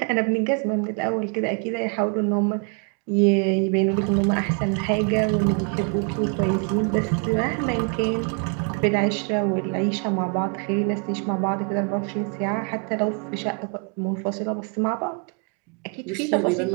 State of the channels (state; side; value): quieter; left; 38.9 dB